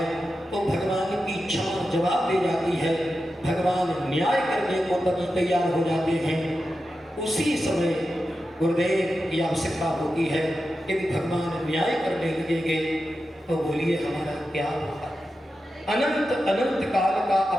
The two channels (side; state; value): both; normal; correlation 0.91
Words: तो भगवान की क्षमा जवाब दे जाती है, भगवान न्याय करने को तब तैयार हो जाते हैं। उसी समय गुरुदेव की आवश्यकता होती है। यदि भगवान न्याय करने लगेंगे तो बोलिए हमारा क्या होगा। अनंत अनंत काल का